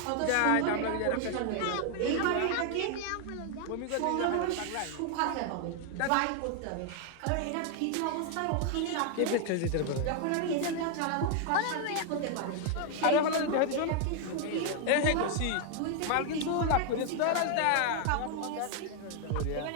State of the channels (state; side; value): different; both; correlation 0.00